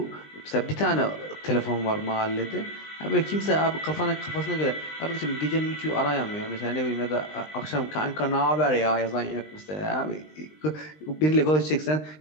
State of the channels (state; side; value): late; right; 20 ms